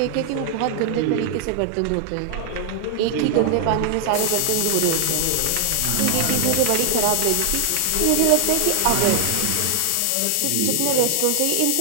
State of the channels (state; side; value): different; both; correlation 0.00